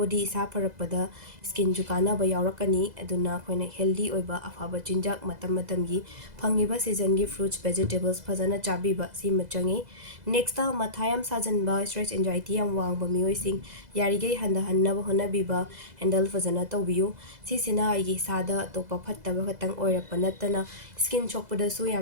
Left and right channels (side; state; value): left; late; 2.0 ms